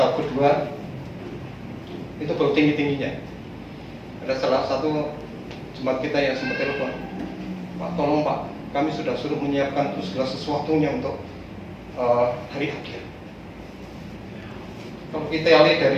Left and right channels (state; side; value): identical; both; correlation 1.00